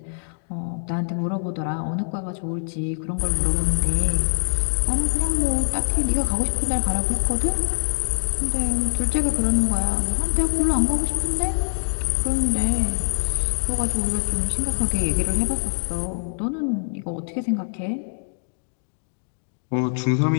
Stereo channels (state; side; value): silent; right; digital silence